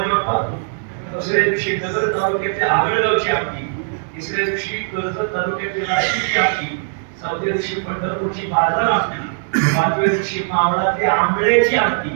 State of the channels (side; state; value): left; silent; digital silence